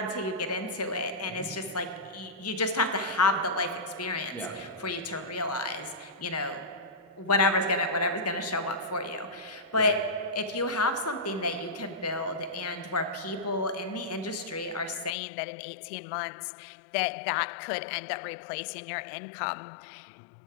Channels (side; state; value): right; drops out; at 15.2 s